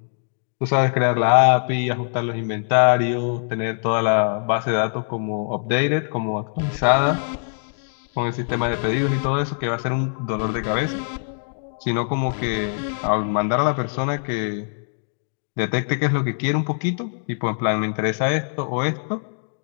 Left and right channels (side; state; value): right; silent; digital silence